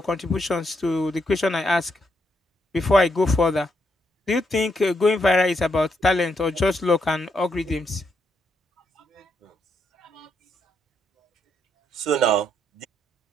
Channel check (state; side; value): normal; both; correlation 0.78